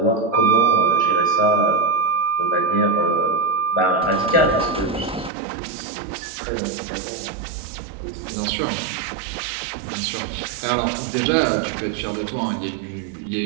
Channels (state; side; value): drops out; left; at 5.3 s